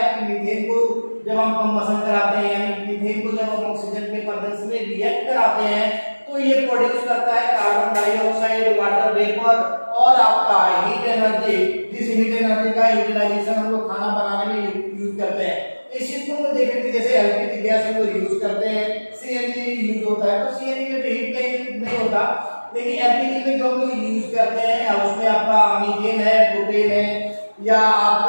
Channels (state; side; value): inverted; both; correlation -1.00